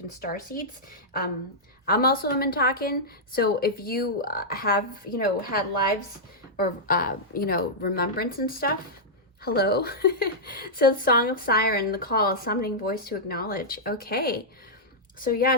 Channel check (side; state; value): both; normal; correlation -0.09